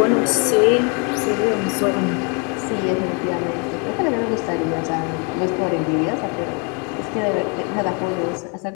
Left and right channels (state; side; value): quieter; right; 33.7 dB